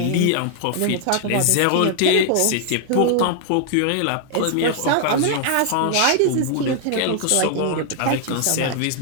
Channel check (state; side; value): different; both; correlation 0.00